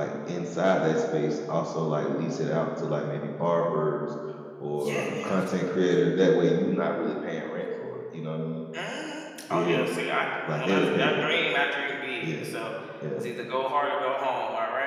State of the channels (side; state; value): both; identical; correlation 1.00